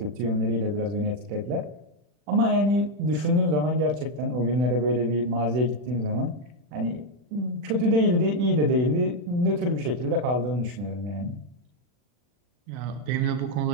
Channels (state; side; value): late; left; 40 ms